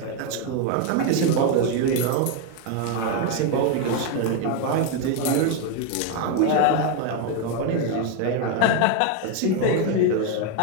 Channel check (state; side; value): different; both; correlation 0.02